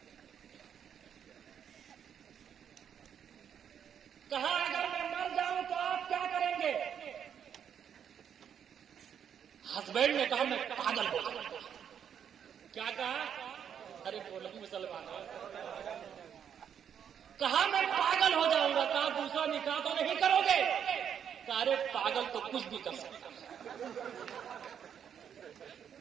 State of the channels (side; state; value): left; quieter; 8.4 dB